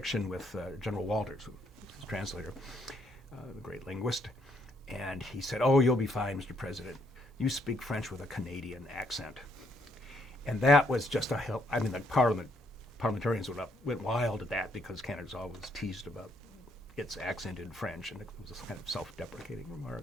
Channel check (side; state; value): both; normal; correlation 0.72